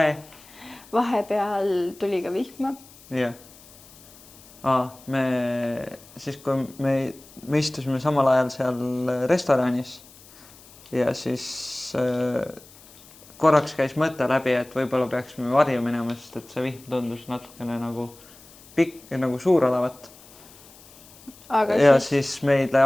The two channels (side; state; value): left; noise; hiss, 23 dB below the sound